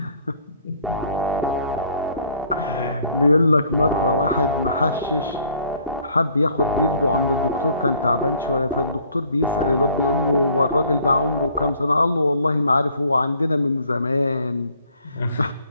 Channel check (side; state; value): both; inverted; correlation -0.59